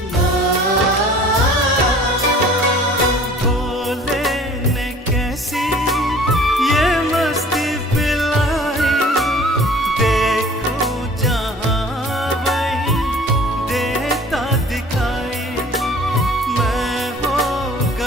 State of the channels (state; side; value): normal; both; correlation 0.49